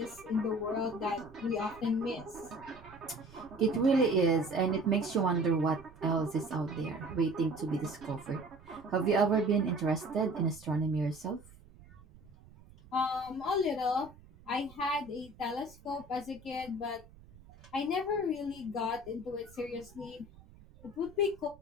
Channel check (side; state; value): right; noise; rumble, 22 dB below the sound